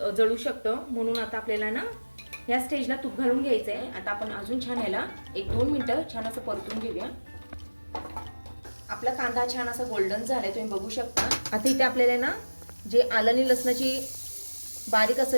जळू शकतं, म्हणून आता आपल्याला ना या स्टेजला तूप घालून घ्यायचंय. आता आपण अजून छान ह्याला 1-2 मिनिटं छान असं परतून घेऊया. आपला कांदा छान असा गोल्डन झालाय, तुम्ही बघू शकता. आता इथे आपल्याला ना जे आलं आणि लसणाची बारीक असं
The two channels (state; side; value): inverted; both; correlation -1.00